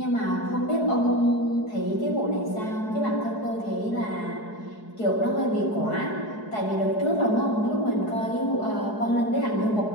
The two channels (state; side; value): late; right; 4.7 ms